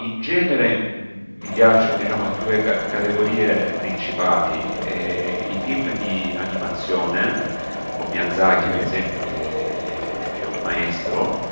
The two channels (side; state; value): both; inverted; correlation -1.00